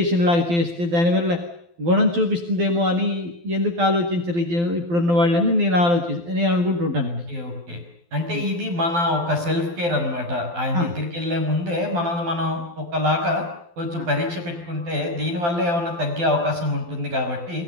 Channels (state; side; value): late; left; 12 ms